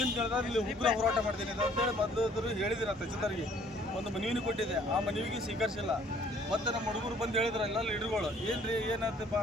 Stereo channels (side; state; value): both; normal; correlation 0.58